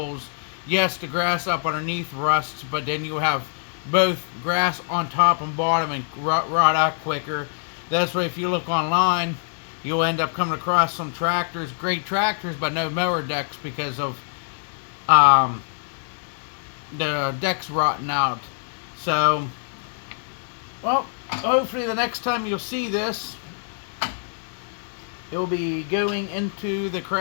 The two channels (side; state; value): right; silent; digital silence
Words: Yes, the grass up underneath rusts, but then you have both grass on top and bottom and rot out quicker. That's why if you look online, you'll end up coming across some tractors, great tractors, but no mower decks because of the deck's rotting out. So, well, hopefully the next time you'll see this, it'll be going into the